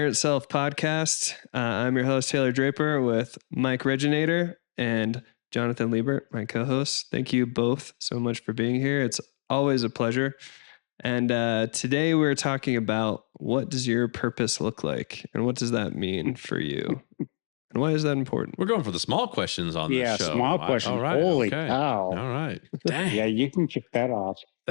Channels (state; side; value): silent; right; digital silence